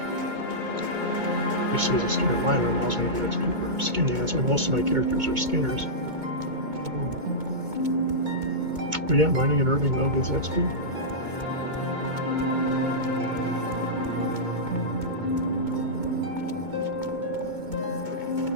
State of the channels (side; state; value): left; late; 2.2 ms